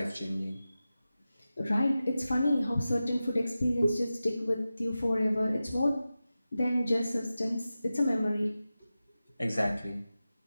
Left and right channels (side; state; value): both; inverted; correlation -0.94